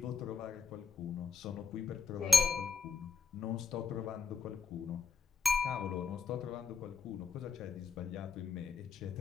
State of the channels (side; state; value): right; quieter; 5.1 dB